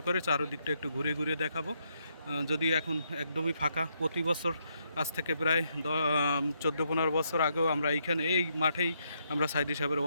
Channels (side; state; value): both; inverted; correlation -0.77